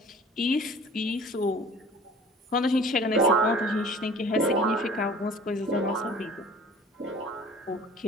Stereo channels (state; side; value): normal; both; correlation 0.46